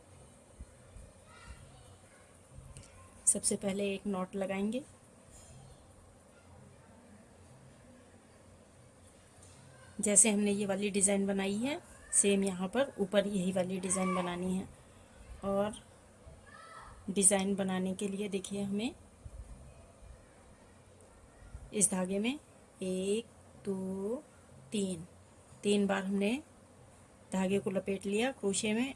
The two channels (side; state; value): both; identical; correlation 1.00